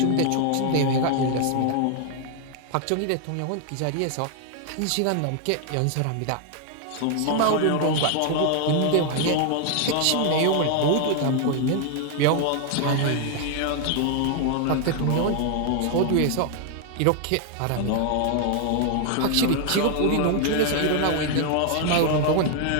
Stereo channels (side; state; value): both; different; correlation 0.00